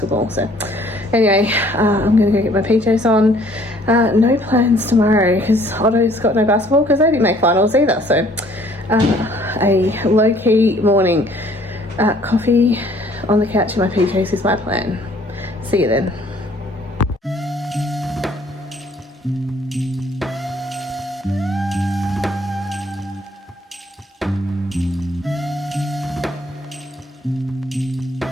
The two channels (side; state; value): both; normal; correlation 0.59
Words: so anyway, I'm gonna go get my PJs on. No plans tomorrow because Otto's got no basketball because they didn't make finals either, so a low-key morning. Coffee on the couch in my PJs is my plan. See you then.